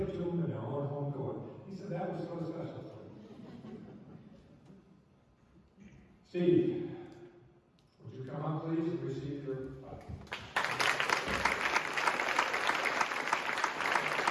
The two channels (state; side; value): identical; both; correlation 1.00